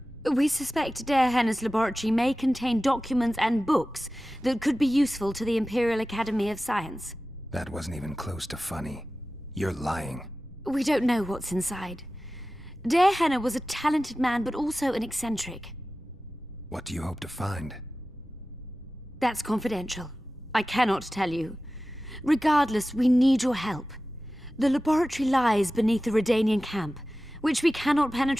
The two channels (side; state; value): both; normal; correlation 0.95